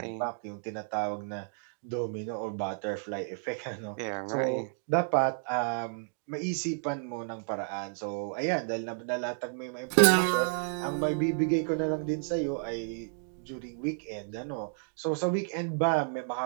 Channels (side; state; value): left; silent; digital silence